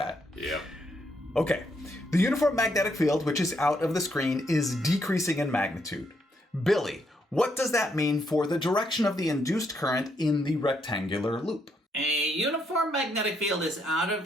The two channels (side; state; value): both; normal; correlation 0.75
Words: Yep. Okay, the uniform magnetic field, which is out of the screen, is decreasing in magnitude. Billy, what does that mean for the direction of the induced current in the rectangular loop? A uniform magnetic field is out of